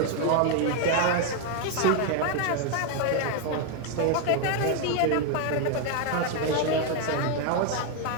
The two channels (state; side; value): different; both; correlation 0.01